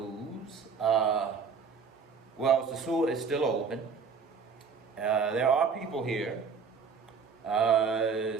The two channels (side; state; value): left; quieter; 5.7 dB